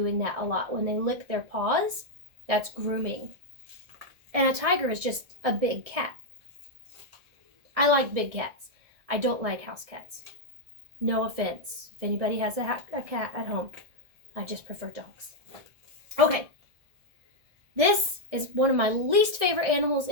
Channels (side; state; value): left; late; 1.6 ms